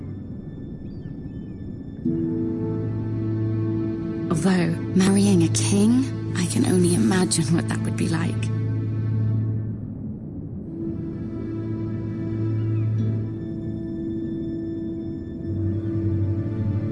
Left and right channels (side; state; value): both; identical; correlation 1.00